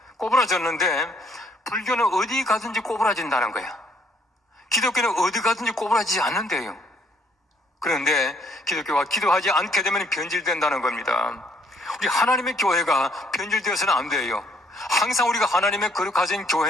꼬부라졌는데 불교는 어디 가든지 꼬부라진다는 거야. 기독교는 어디 가든지 꼬부라지지 않는데요. 그런데 기독교가 기도하지 않게 되면 변질된다는 겁니다. 우리 하나님의 교회가 변질되어서는 안 돼요. 항상 우리가 하나님의 거룩하신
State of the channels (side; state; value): both; normal; correlation 0.66